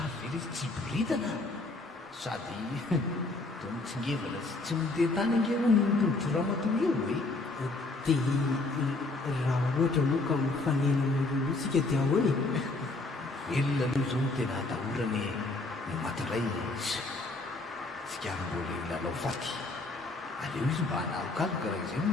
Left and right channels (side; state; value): right; quieter; 3.1 dB